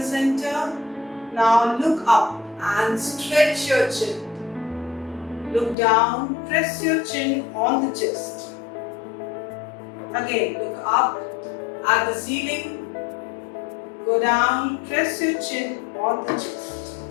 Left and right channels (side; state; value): right; drops out; at 5.8 s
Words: center. Now look up and stretch your chin. Look down, press your chin on the chest. Again, look up at the ceiling. Go down, press your chin on the chest.